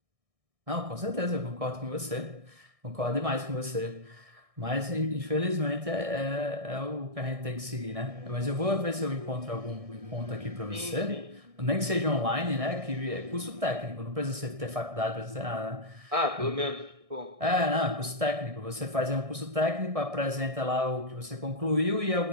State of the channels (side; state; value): left; late; 1.6 ms